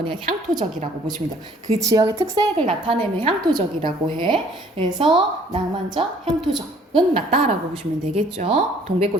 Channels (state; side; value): normal; both; correlation 0.58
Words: 향토적이라고 보시면 돼요. 그 지역의 특색을 나타내면 향토적이라고 해. 그래서 낭만적, 향토적은 맞다라고 보시면 되겠죠.